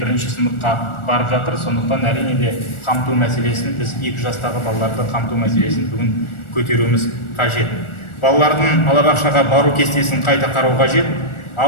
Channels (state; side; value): late; right; 1.4 ms